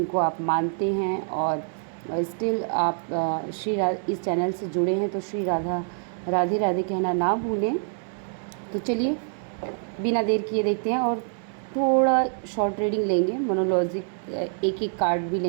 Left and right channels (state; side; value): silent; left; digital silence